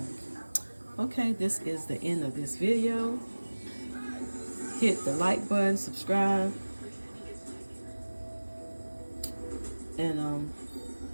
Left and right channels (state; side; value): inverted; both; correlation -1.00